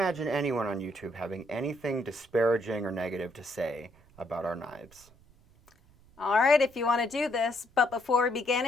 anyone on YouTube having anything disparaging or negative to say about our knives. All right, if you want to do this, but before we begin,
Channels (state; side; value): noise; right; rumble, 28 dB below the sound